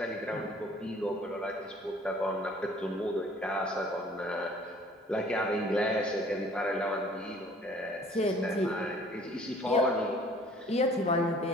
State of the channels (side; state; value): both; normal; correlation 0.54